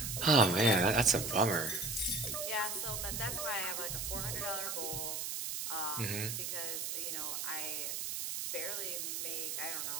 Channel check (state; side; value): noise; right; hiss, 3 dB below the sound